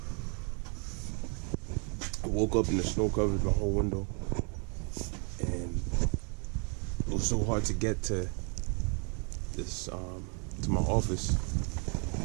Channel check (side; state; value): left; quieter; 37.4 dB